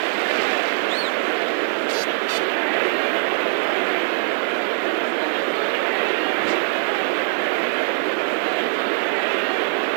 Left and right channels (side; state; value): left; silent; digital silence